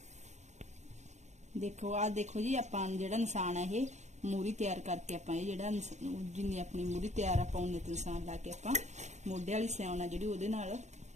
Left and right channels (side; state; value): left; late; 0.33 ms